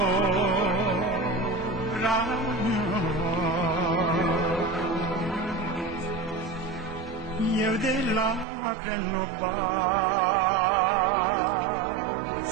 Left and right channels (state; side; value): drops out; left; at 8.5 s